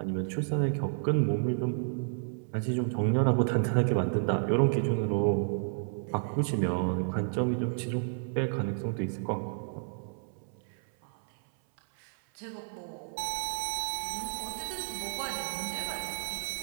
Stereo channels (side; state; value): left; silent; 57 dB below the other